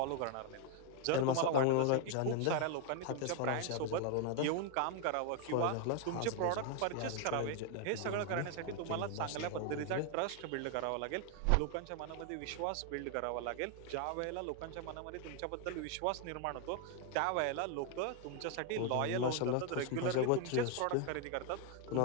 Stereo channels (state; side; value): different; both; correlation 0.00